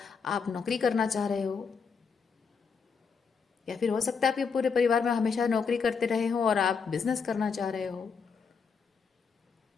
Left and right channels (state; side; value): quieter; right; 5.7 dB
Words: नौकरी करना चाह रहे हो। या फिर हो सकता है आपके पूरे परिवार में हमेशा नौकरी करते रहे हो और आप बिजनेस करना चाह रहे हो,